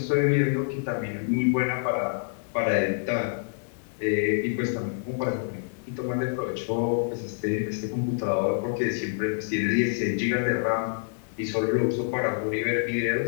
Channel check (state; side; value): silent; right; digital silence